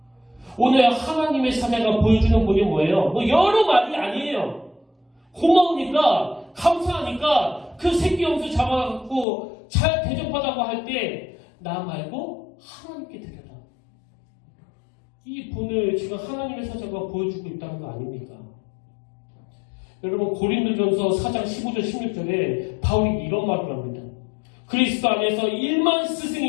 오늘 하나님의 사자가 보여주는 분이 뭐예요? 뭐 여러 말이 아니에요. 고마우니까, 감사하니까 그 새끼 염소 잡아갖고 잘 대접하다고 할 때 나 말고 하나님께 드려라. 이 분을 지금 하나님의 사자가 보여주고 있다는 거 아닙니까? 여러분, 고린도전서 4장 15절 16절에 바울이 이런 말을 합니다. 그리스도 안에서 1만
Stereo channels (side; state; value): right; drops out; at 9.2 s